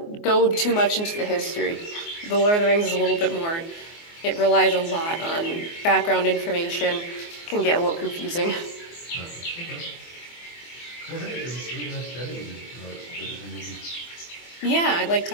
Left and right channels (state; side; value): late; right; 24 ms